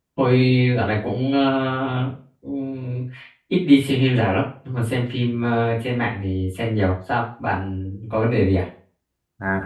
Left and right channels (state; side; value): identical; both; correlation 1.00